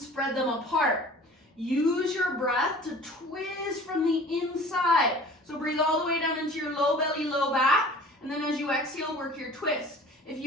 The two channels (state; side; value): normal; both; correlation 0.44